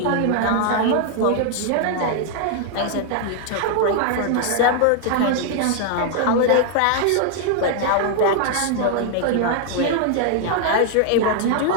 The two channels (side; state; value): both; different; correlation 0.00